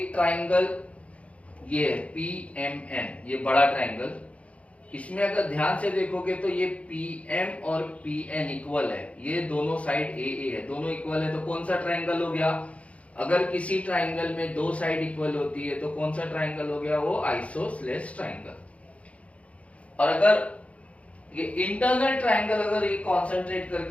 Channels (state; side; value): late; right; 0.064 ms